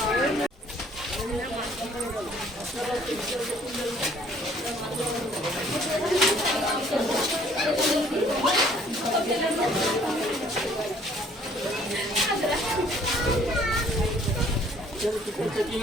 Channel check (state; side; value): normal; both; correlation 0.59